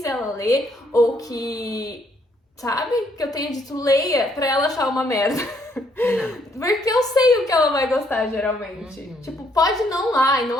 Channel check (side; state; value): both; normal; correlation 0.70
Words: ela ler, ou que, sabe, que eu tenha dito leia pra ela achar uma merda. Não. Porque eu sei o que ela vai gostar, geralmente. Tipo, pode não lá, e